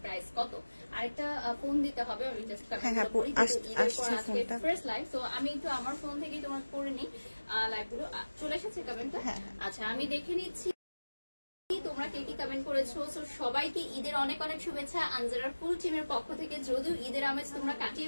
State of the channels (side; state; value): both; inverted; correlation -1.00